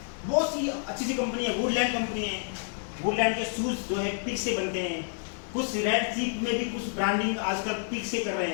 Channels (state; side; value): silent; right; 59 dB below the other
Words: बहुत सी अच्छी सी कंपनी है। वुडलैंड कंपनी है, वुडलैंड के शूज जो है पिग से बनते हैं। कुछ रेड चीप में भी कुछ ब्रांडिंग आजकल पिग से कर रहे